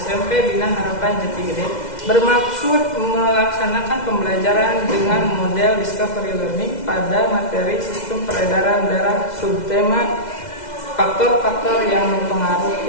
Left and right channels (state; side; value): late; right; 2.0 ms